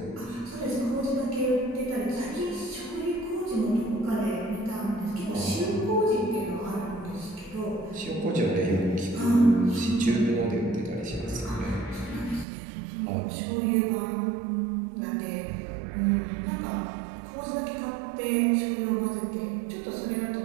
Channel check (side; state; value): left; drops out; at 12.5 s